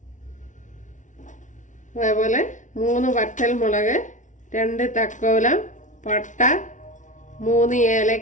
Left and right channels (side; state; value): right; late; 0.37 ms